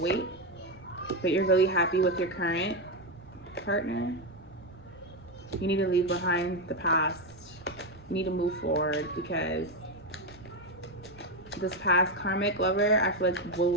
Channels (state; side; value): noise; right; rumble, 24 dB below the sound